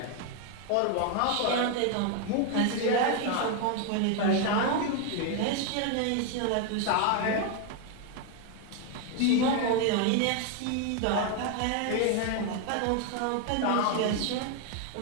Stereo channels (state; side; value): different; both; correlation 0.01